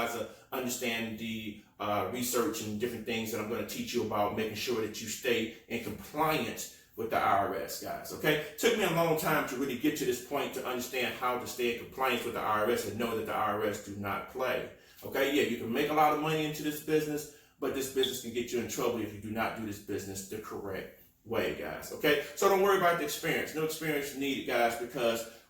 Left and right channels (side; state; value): both; identical; correlation 1.00